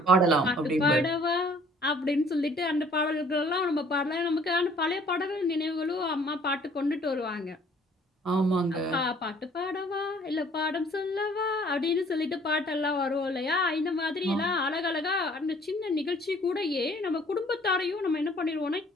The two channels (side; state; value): both; normal; correlation 0.57